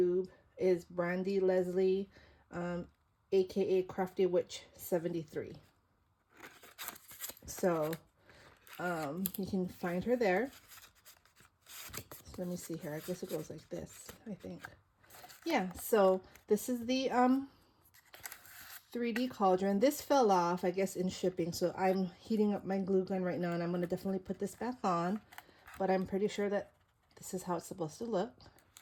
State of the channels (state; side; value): identical; both; correlation 1.00